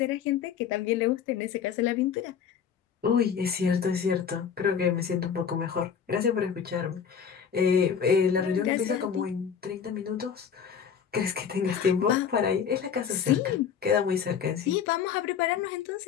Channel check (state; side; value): quieter; right; 7.4 dB